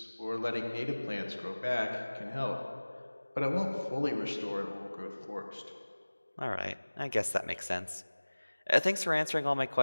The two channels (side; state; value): both; inverted; correlation -1.00